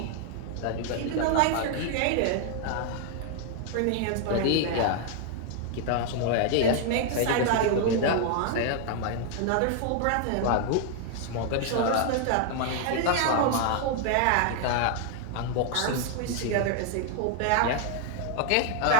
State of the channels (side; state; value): both; different; correlation 0.00